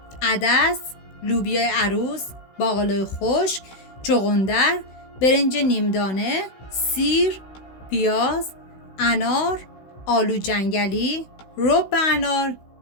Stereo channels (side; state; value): right; late; 16 ms